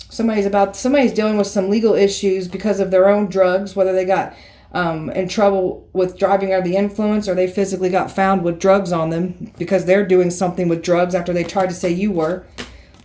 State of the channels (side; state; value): both; identical; correlation 1.00